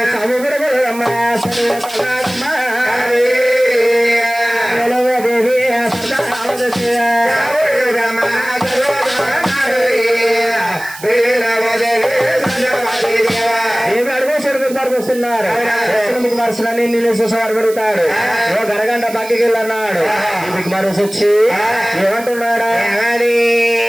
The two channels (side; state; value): right; noise; hiss, 16 dB below the sound